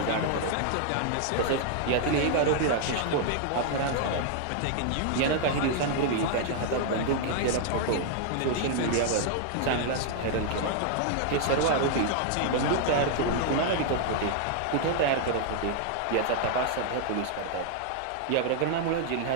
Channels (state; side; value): different; both; correlation -0.01